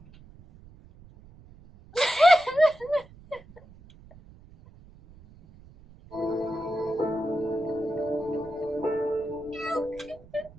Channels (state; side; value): noise; right; rumble, 23 dB below the sound